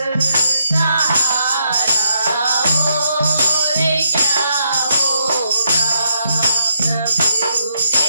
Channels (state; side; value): inverted; both; correlation -0.75